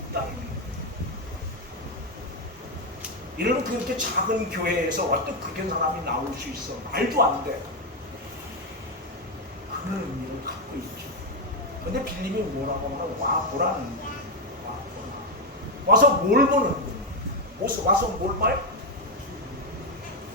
거예요. 이런 그렇게 작은 교회에서 어떤 그런 사람이 나올 수 있어? 말도 안 돼. 그런 의미를 갖고 있죠. 근데 빌립이 뭐라고 하면 와 보라는 거예요. 와 보라. 와서 뭘 보는 거예요? 와서 뭘 봐요?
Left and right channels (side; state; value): both; normal; correlation 0.05